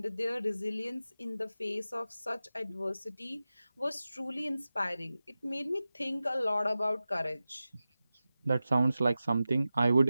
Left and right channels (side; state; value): both; inverted; correlation -0.94